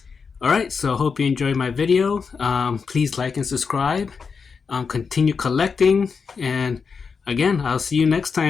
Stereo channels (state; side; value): quieter; right; 5.5 dB